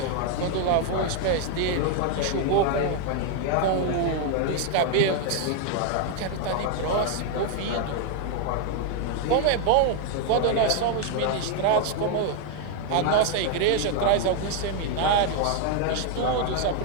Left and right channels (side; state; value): both; different; correlation 0.01